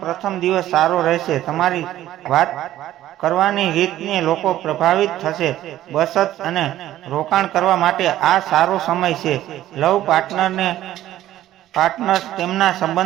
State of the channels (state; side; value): quieter; left; 13.5 dB